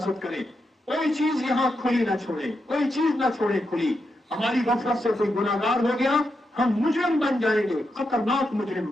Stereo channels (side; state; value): both; normal; correlation 0.85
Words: करें। कोई चीज यहां खुली ना छोड़े, कोई चीज ना छोड़े खुली। हमारी गफलत से कोई गुनाहगार हो गया, हम मुजरिम बन जाएंगे, खतरनाक मुजरिम